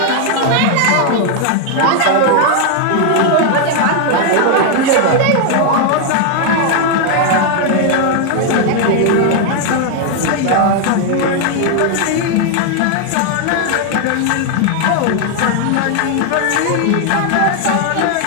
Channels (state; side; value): different; both; correlation 0.00